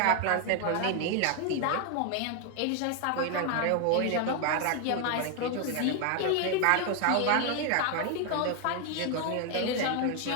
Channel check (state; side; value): different; both; correlation 0.01